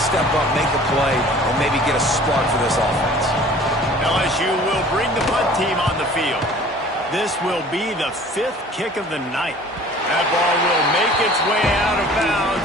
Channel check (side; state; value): both; normal; correlation 0.48